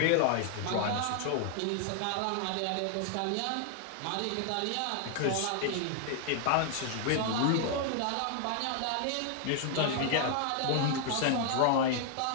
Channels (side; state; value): both; different; correlation 0.00